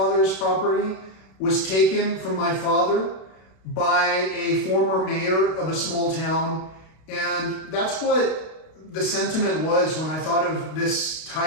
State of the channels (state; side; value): late; right; 32 ms